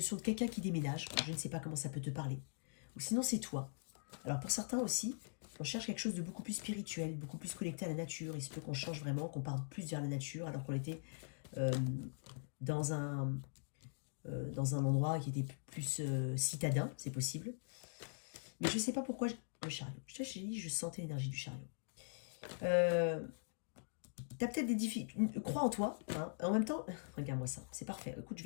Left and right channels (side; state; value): right; silent; digital silence